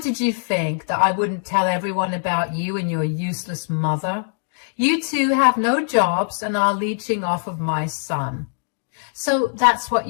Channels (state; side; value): silent; right; digital silence